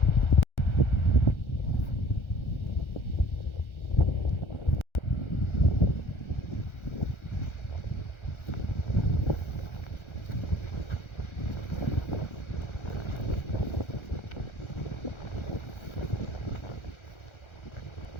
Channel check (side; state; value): right; late; 1.4 ms